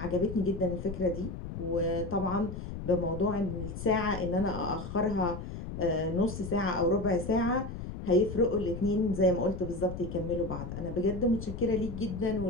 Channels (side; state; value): left; noise; rumble, 8 dB below the sound